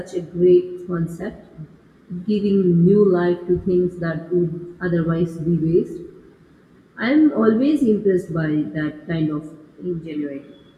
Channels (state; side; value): identical; both; correlation 1.00